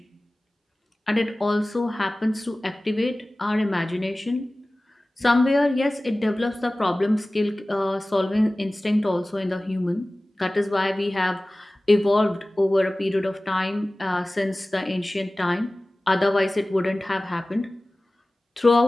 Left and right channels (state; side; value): normal; both; correlation 0.98